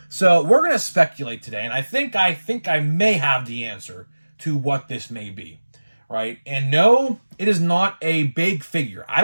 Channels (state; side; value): inverted; both; correlation -1.00